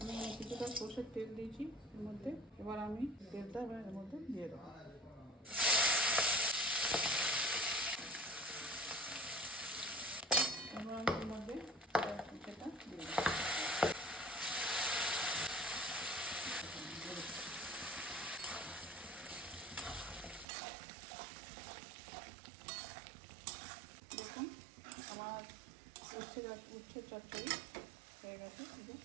কিছুটা সর্ষের তেল দিয়েছি এর মধ্যে। এবার আমি তেলটা এর মধ্যে দিয়ে দেবো। এবার আমি এর মধ্যে সেটা দিয়ে দেবো। দেখুন আমার উচ্ছে চচ্চড়ি হয়ে গেছে, শুধু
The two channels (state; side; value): drops out; left; at 20.5 s